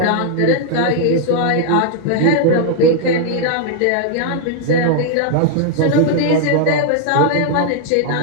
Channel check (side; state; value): both; different; correlation 0.00